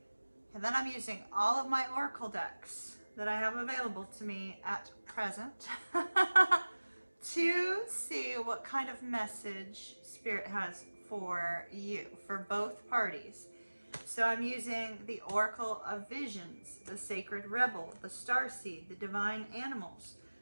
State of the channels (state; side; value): inverted; both; correlation -1.00